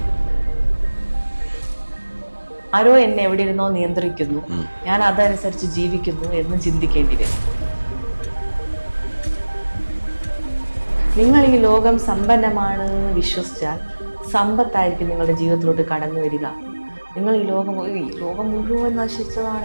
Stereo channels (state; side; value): inverted; both; correlation -1.00